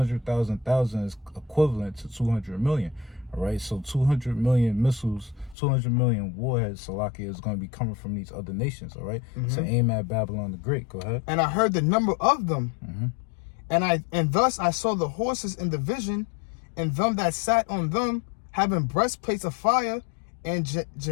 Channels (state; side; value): drops out; right; at 5.6 s